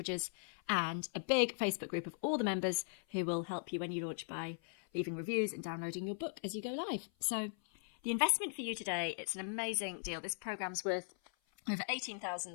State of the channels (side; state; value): right; silent; 52 dB below the other